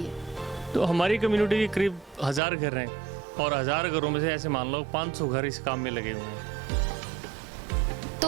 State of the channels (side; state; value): left; drops out; at 2.4 s